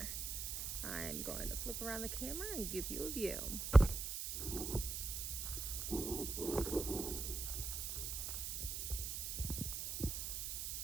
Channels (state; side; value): noise; right; hiss, 3 dB below the sound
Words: I'm going to flip around the camera and give you a view.